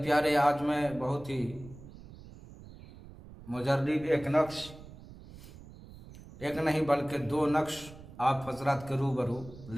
आज मैं बहुत ही मुजर्रिब एक नक्श, एक नहीं बल्कि दो नक्श आप हजरात के रूबरू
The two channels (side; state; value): right; noise; rumble, 18 dB below the sound